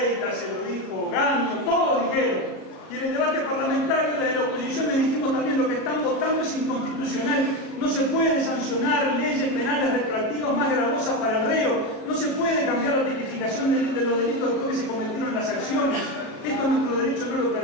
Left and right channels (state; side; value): late; right; 37 ms